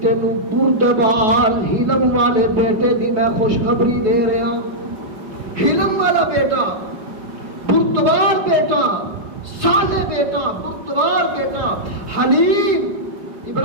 تینوں بردبار حلم والے بیٹے دی میں خوشخبری دے رہا ہوں۔ حلم والا بیٹا، بردبار بیٹا، صالح بیٹا، بردبار بیٹا، حلیم۔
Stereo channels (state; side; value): late; left; 4.7 ms